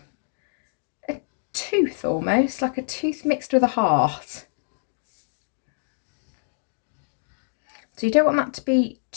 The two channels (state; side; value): silent; right; digital silence